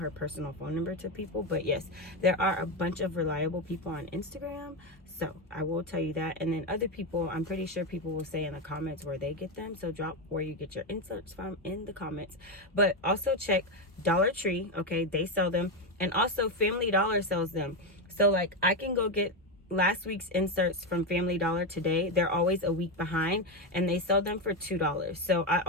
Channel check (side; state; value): both; normal; correlation 0.10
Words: personal phone number to people. But yes, there are a bunch of reliable people on Instagram. So I will tell you that. And then other people, I'm pretty sure people will say in the comments where they get them. So drop where you get your inserts from in the comments. But also check Dollar Tree. Okay, they sell them. And also Family Dollar sells them. So like, I can go get last week's inserts from Family Dollar today. They're always a week behind, and they sell them for $2. So I